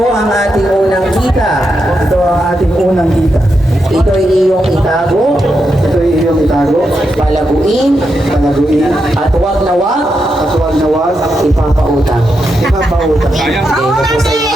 ang ating unang kita. Ito ang ating unang kita. Ito ay iyong itago, Ito ay iyong itago, palaguin, panaguin, at huwag na huwag at huwag na huwag ipapautang. ipapautang. Okay, tapos sa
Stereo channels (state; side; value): normal; both; correlation 0.85